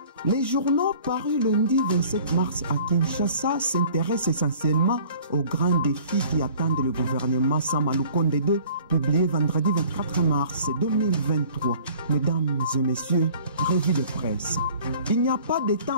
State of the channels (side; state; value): both; inverted; correlation -0.50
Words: Les journaux parus lundi 27 mars à Kinshasa s'intéressent essentiellement aux grands défis qui attendent le gouvernement Samalukonde II, publié vendredi 24 mars 2023. Mesdames et messieurs, revue de presse. Il n'y a pas de